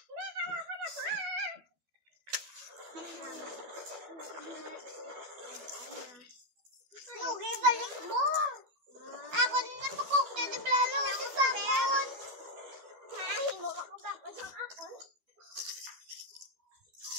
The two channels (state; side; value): late; left; 12 ms